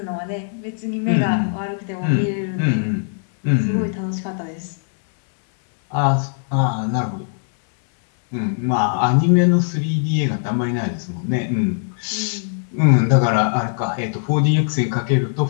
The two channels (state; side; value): silent; right; 62 dB below the other